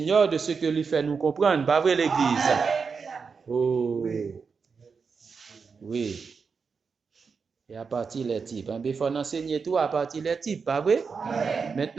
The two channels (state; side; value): quieter; left; 5.4 dB